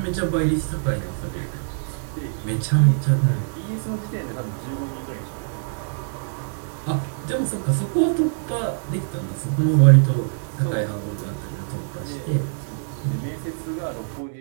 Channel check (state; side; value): silent; left; digital silence